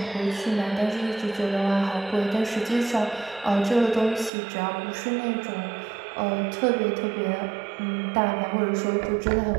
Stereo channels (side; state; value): left; drops out; at 4.3 s